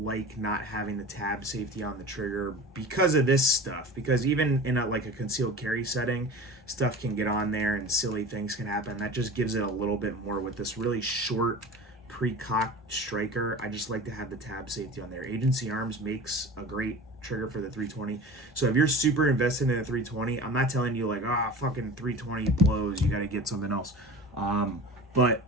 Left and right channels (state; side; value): normal; both; correlation 0.35